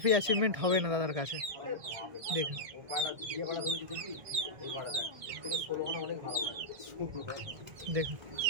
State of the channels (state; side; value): late; left; 1.6 ms